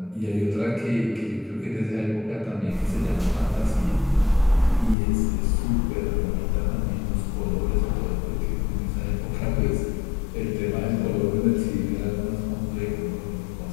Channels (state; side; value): drops out; right; at 5.0 s